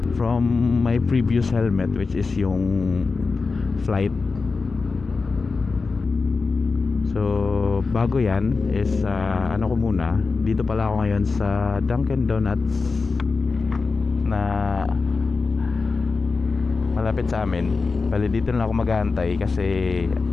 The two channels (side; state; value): right; quieter; 4.3 dB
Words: from my previous helmet, which is yung flight. So bago yan is ano ko muna, dito pala ako ngayon sa Dunkin Donuts na malapit sa amin. Bali dito na ako mag-aantay kasi